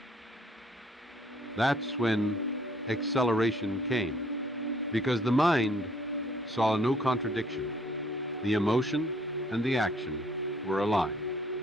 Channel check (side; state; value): both; normal; correlation 0.62